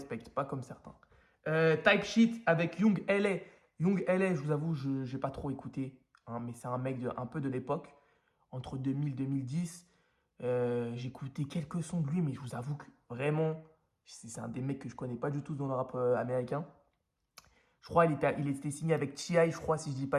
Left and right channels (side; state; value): both; identical; correlation 1.00